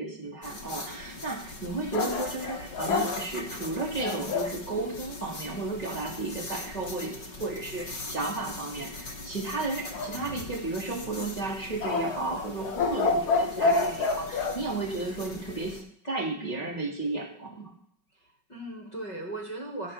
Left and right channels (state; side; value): late; right; 5.3 ms